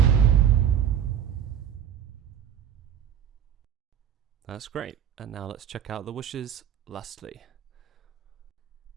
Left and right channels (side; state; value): left; quieter; 9.3 dB